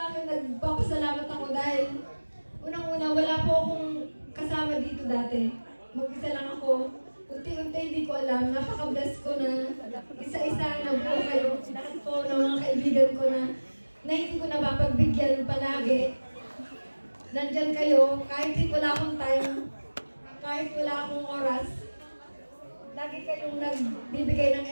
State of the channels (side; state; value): both; inverted; correlation -1.00